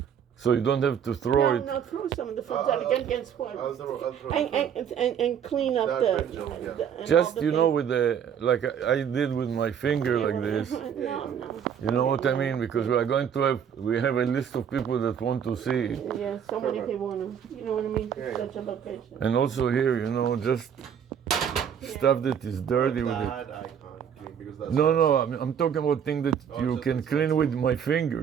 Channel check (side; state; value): left; quieter; 8.2 dB